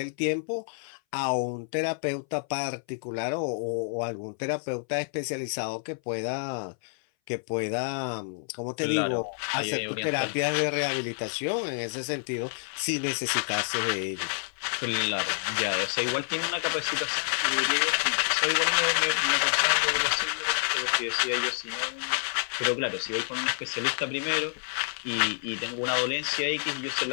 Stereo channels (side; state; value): right; silent; 59 dB below the other